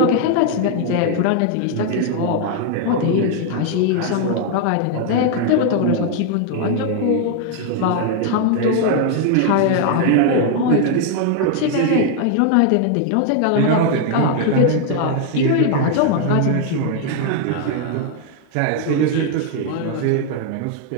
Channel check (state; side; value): different; both; correlation 0.00